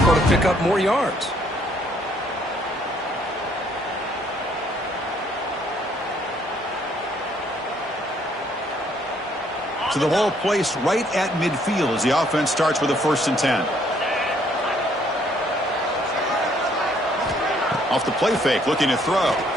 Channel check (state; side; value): normal; both; correlation 0.66